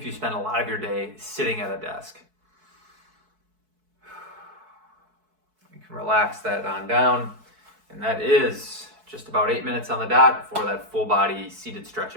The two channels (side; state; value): left; late; 4.6 ms